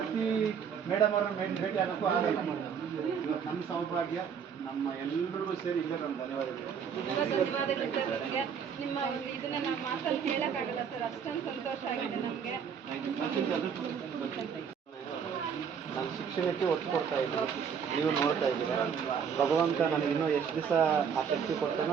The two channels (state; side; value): quieter; left; 7.1 dB